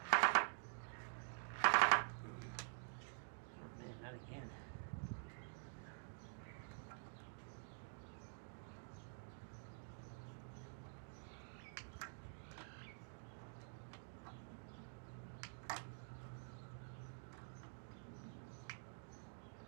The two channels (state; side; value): silent; left; digital silence